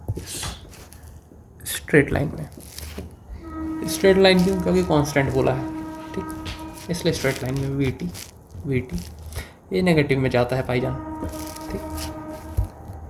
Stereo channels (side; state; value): both; identical; correlation 1.00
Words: स्ट्रेट लाइन में। स्ट्रेट लाइन क्यों, क्योंकि कांस्टेंट बोला है, ठीक, इसलिए स्ट्रेट लाइन में वी टी ये नेगेटिव में जाता है भाईजान, ठीक।